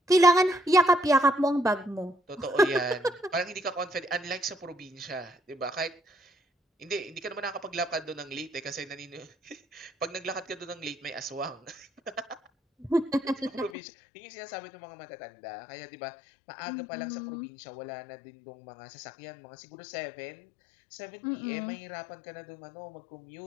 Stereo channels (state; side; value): drops out; right; at 13.7 s